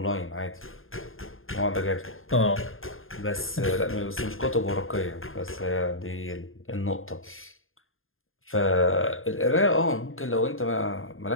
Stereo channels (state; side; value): late; right; 0.60 ms